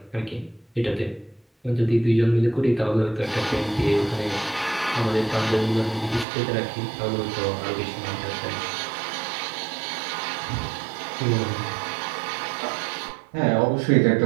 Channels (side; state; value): left; drops out; at 6.2 s